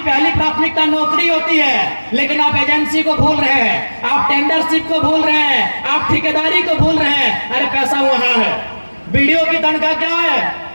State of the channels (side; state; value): both; inverted; correlation -1.00